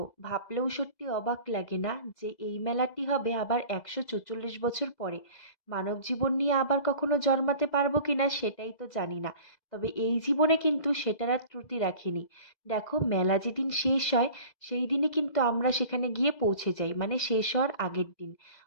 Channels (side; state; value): right; late; 2.0 ms